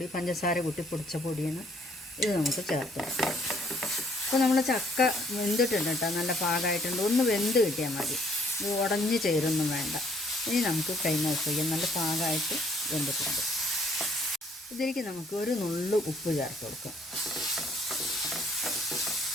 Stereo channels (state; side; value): normal; both; correlation 0.63